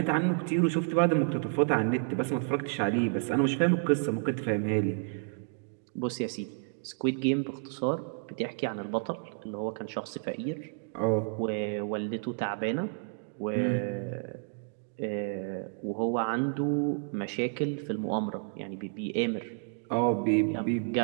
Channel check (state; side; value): silent; left; 57 dB below the other